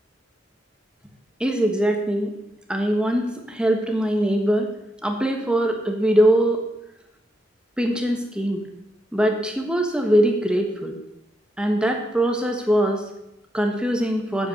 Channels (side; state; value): both; normal; correlation 0.82